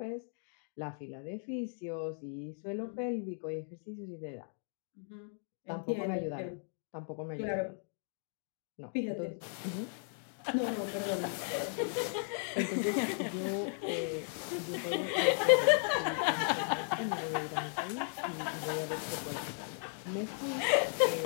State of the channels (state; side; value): silent; right; 54 dB below the other